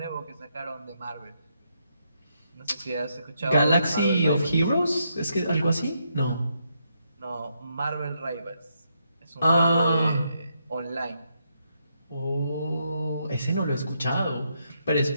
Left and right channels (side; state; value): both; inverted; correlation -0.78